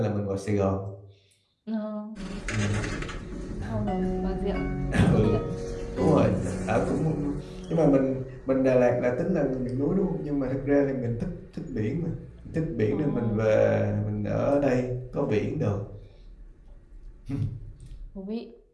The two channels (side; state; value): both; identical; correlation 1.00